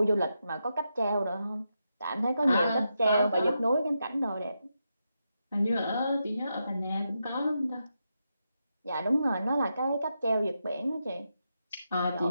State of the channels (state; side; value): inverted; both; correlation -0.85